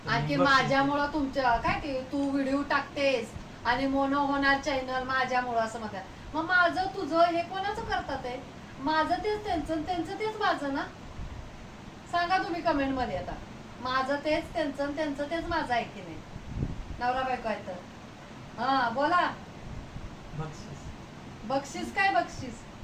आणखी माझ्यामुळं तुमच्या काय ते तू व्हिडिओ टाकतेस आणि मोनो होणार चॅनल माझ्यामुळं असं म्हणतात. मग माझं तुझं हे कोणाचं करतात आहे? माझं तेच त्यांचं, त्यांचं तेच माझं ना. सांगा तुम्ही कमेंट मध्ये आता. माझं तेच त्यांचं, त्यांचं तेच माझं आहे की नाही? नवरा बायको आहे तर. हा बोला. बक्षीस बक्षीस काय बक्षीस?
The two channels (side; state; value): both; identical; correlation 1.00